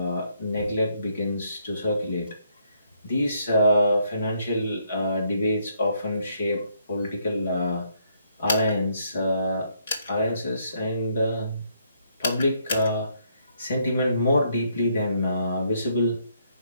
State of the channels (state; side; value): inverted; both; correlation -0.72